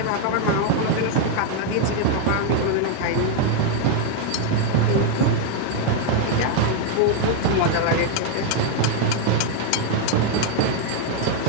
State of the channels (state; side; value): different; both; correlation 0.00